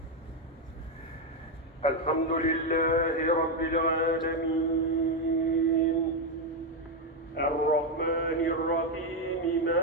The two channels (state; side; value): normal; both; correlation 0.05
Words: الحمد لله رب العالمين الرحمن الرحيم